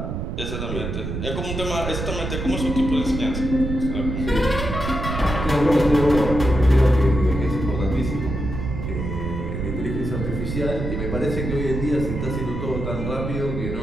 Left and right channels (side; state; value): right; noise; rumble, 4 dB below the sound